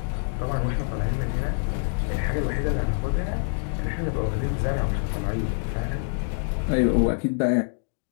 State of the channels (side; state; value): right; silent; digital silence